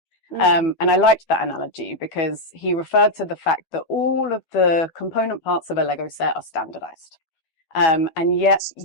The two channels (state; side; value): late; right; 12 ms